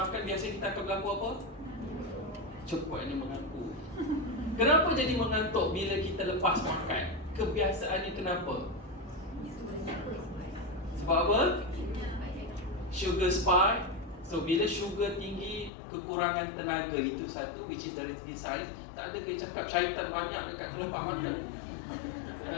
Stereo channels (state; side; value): drops out; right; at 15.7 s